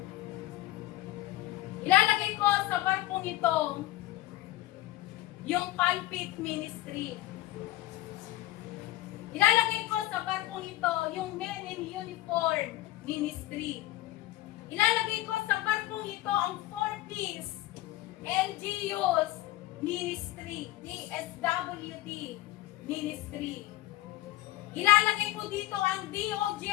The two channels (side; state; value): right; quieter; 16.8 dB